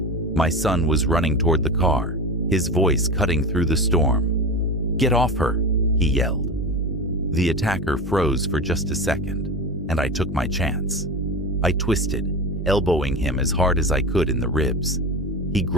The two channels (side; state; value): both; normal; correlation 0.26